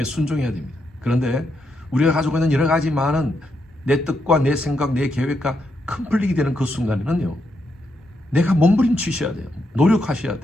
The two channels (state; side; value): normal; both; correlation 0.81